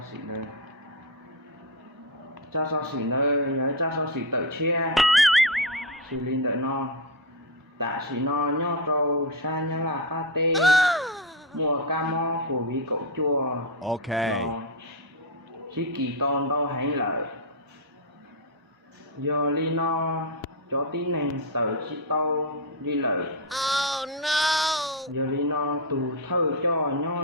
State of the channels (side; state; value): both; normal; correlation 0.07